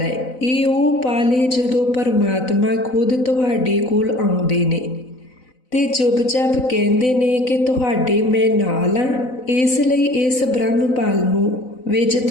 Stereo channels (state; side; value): late; right; 4.0 ms